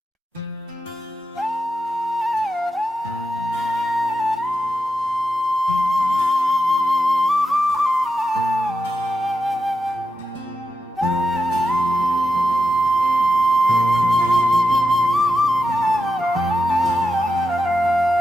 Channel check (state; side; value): normal; both; correlation 0.87